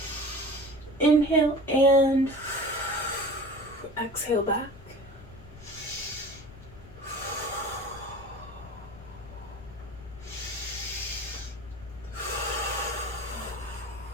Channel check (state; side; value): noise; left; rumble, 20 dB below the sound